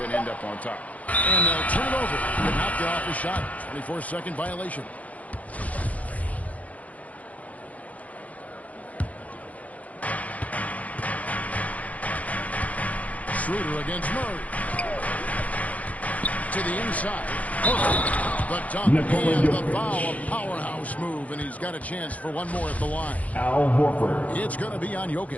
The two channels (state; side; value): late; right; 0.070 ms